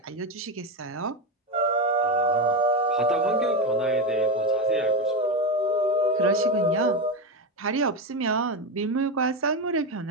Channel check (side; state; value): both; normal; correlation 0.14